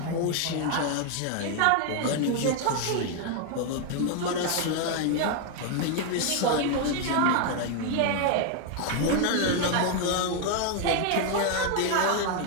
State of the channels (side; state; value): both; different; correlation 0.00